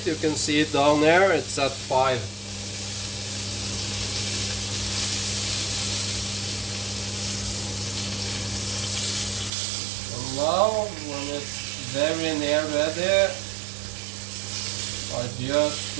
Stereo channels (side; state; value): left; drops out; at 9.5 s